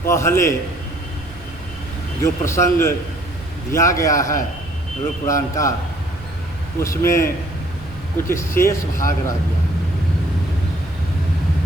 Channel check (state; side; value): noise; right; rumble, 17 dB below the sound